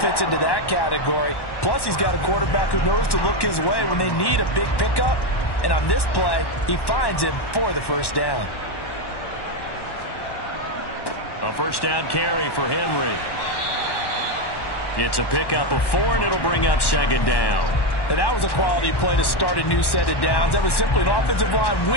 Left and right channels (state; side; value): late; right; 1.1 ms